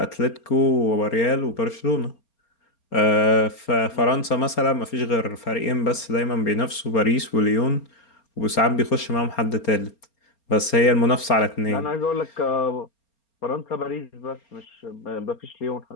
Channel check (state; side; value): late; right; 4.3 ms